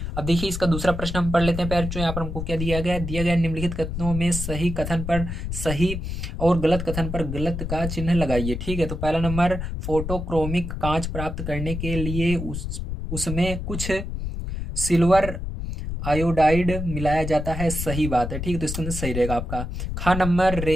अब देखिए इसका दूसरा प्रश्न हम पढ़ लेते हैं। पैर जो यहाँ पर हमको क्या दिया गया है, दिया गया निम्नलिखित कथनों में सही कथन पर सही और गलत कथन पर गलत का चिन्ह लगाइए, ठीक है। तो पहला नंबर, फोटोक्रोमिक कांच प्राप्त करने के लिए उसमें कुछ सिल्वर आयोडाइड मिलाया जाता है, सही बात है, ठीक है। तो इसके अंदर सही रहेगा आपका। खा नंबर,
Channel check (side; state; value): left; noise; rumble, 5 dB below the sound